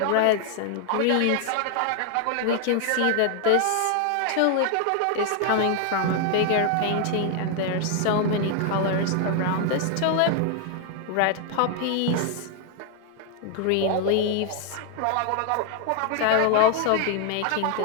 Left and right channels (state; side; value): different; both; correlation 0.00